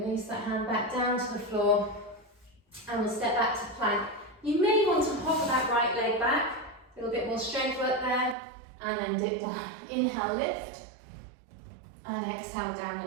that hand back down to the floor. And we'll step back to plank. You may want to hover that right leg back. A little bit more strength work there. And then dip down. Inhale, lift. And exhale,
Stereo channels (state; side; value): drops out; left; at 8.3 s